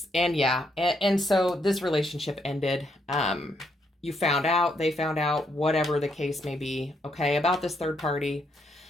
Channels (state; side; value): normal; both; correlation 0.76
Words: And yeah, and so this relationship ended. You found out, they found out, whatever the case may be, okay, about this third party.